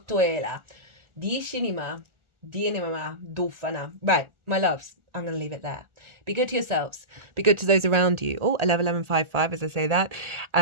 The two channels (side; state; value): left; late; 1.4 ms